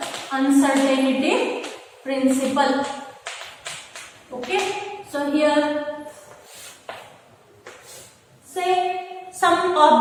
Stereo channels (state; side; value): identical; both; correlation 1.00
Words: uncertainty principle. Okay, so here say some